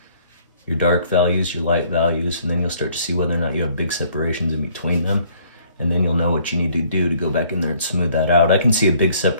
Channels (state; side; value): inverted; both; correlation -0.60